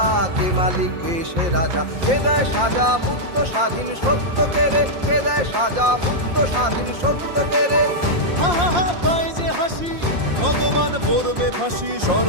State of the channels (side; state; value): left; late; 5.7 ms